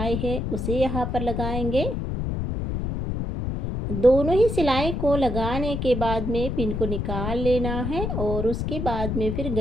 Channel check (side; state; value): left; noise; rumble, 2 dB below the sound